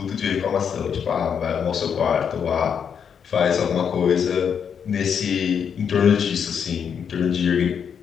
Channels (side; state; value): right; quieter; 7.4 dB